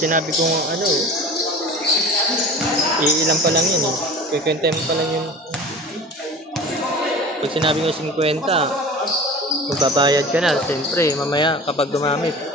sinabi kong ano, iilan pa lang yun eh. Kikwenta mo pa lang yung... Pag sinabi ko 50, magbabayad ka na. Siyempre, mamaya kapag gumamit,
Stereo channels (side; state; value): both; normal; correlation 0.38